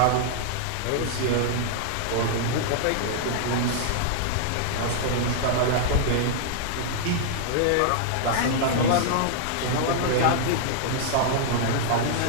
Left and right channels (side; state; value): both; different; correlation -0.01